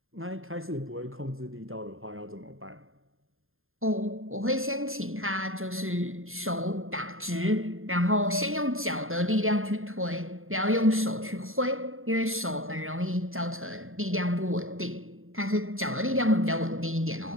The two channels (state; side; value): late; left; 0.61 ms